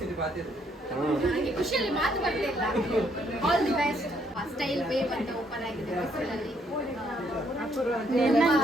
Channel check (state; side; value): normal; both; correlation 0.70